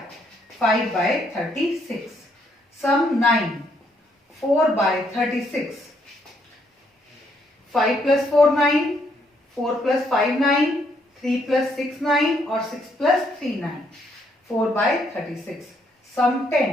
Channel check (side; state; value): both; normal; correlation 0.72